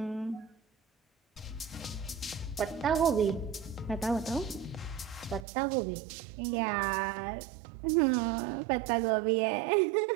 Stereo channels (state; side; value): drops out; left; at 5.5 s